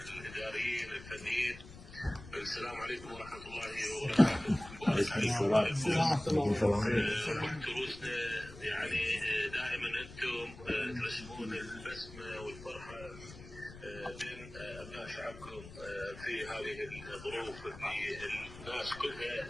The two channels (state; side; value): noise; left; rumble, 15 dB below the sound